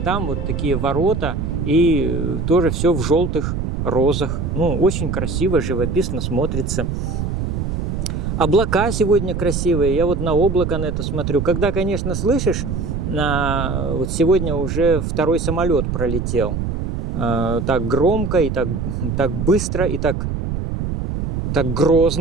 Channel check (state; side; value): noise; right; rumble, 2 dB below the sound